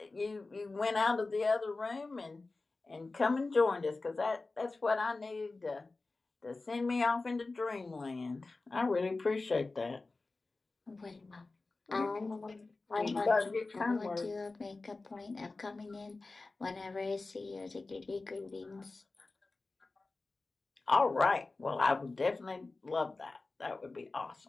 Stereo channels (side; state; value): right; quieter; 3.5 dB